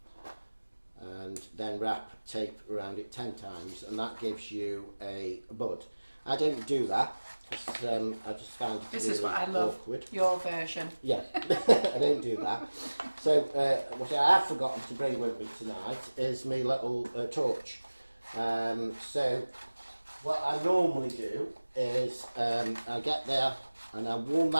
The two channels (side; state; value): both; inverted; correlation -1.00